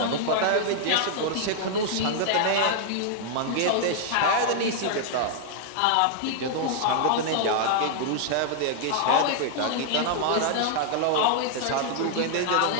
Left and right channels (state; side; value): different; both; correlation -0.01